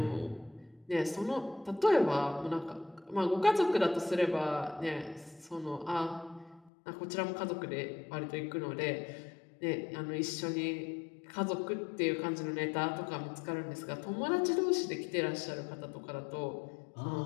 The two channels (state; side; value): drops out; right; at 6.7 s